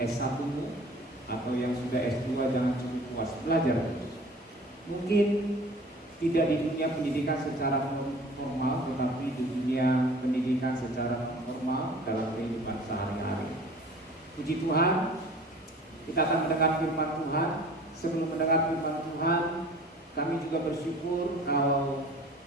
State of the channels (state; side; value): normal; both; correlation 0.45